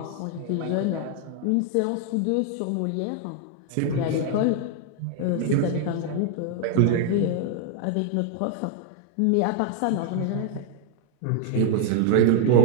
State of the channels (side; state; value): both; different; correlation 0.00